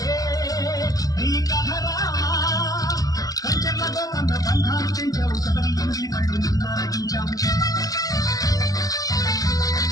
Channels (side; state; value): right; late; 0.17 ms